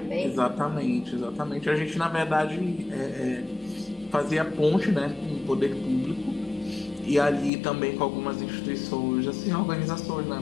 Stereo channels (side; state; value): right; drops out; at 7.5 s